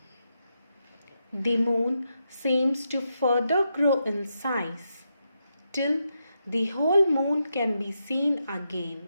The moon seems to further grow in size till the whole moon can be seen again.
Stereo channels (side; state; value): both; inverted; correlation -0.84